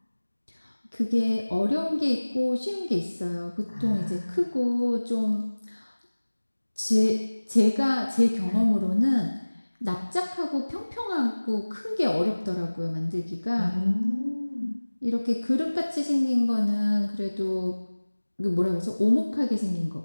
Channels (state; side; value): inverted; both; correlation -1.00